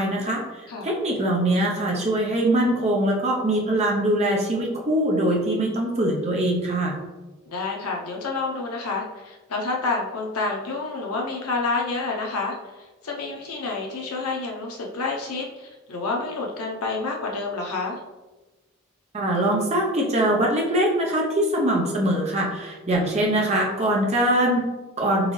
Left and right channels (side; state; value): both; normal; correlation 0.32